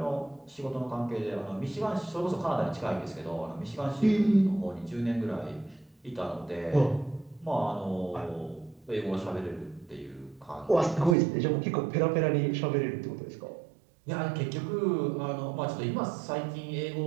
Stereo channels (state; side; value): drops out; left; at 11.2 s